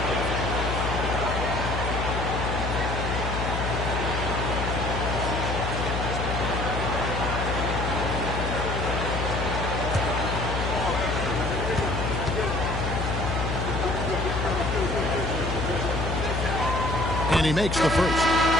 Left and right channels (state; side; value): noise; left; hum, 2 dB below the sound